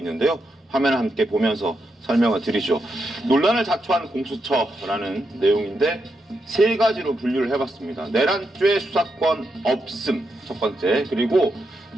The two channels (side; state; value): both; normal; correlation 0.84